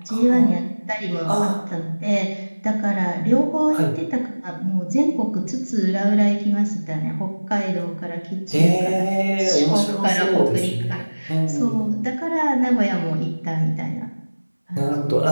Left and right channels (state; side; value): inverted; both; correlation -1.00